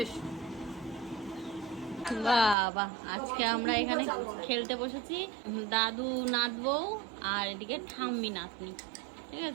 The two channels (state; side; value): drops out; left; at 2.6 s